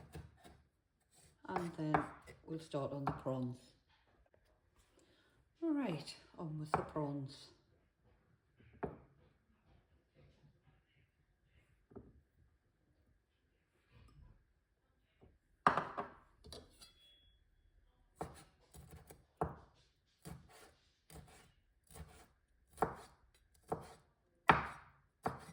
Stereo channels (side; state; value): both; identical; correlation 1.00